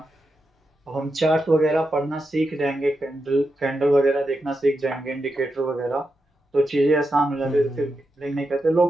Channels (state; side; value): normal; both; correlation 0.87